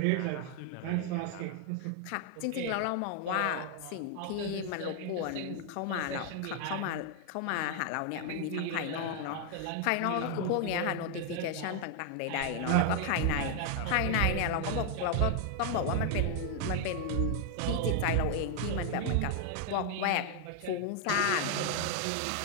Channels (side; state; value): both; different; correlation 0.00